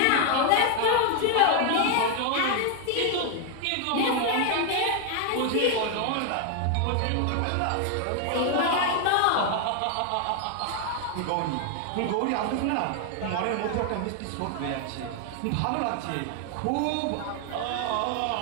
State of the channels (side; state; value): both; different; correlation 0.00